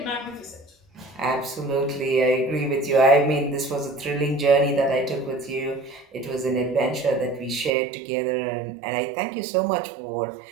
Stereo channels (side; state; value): left; drops out; at 7.8 s